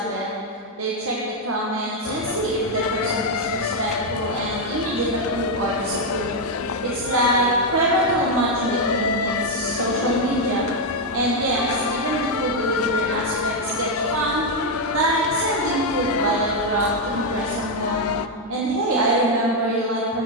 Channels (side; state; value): both; normal; correlation 0.02